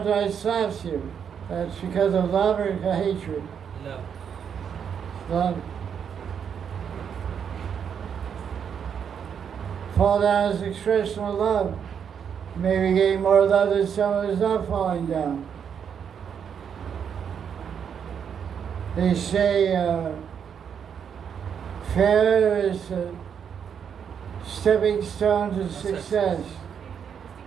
slaps you. That's because of love or hatred? Love. Love. Fall down is expression of love. Maybe getting more love than someone who's not falling down. They say failure is a stepping stone to success.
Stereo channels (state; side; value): quieter; left; 7.6 dB